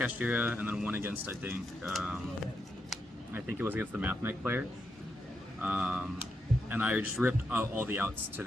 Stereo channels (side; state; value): both; normal; correlation 0.83